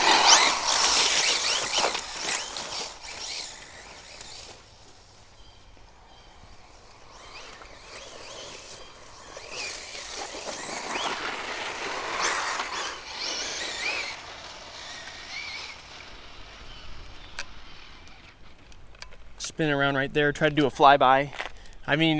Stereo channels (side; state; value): both; identical; correlation 1.00